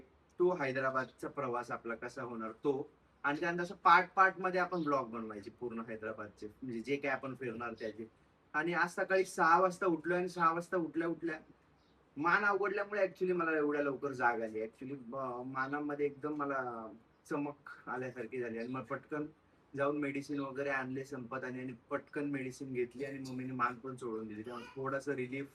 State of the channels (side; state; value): both; identical; correlation 1.00